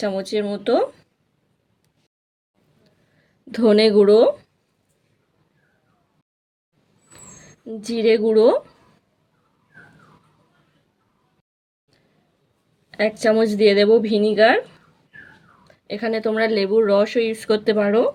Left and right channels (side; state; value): both; identical; correlation 1.00